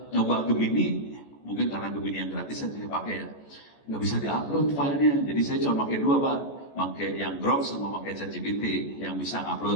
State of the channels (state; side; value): late; right; 14 ms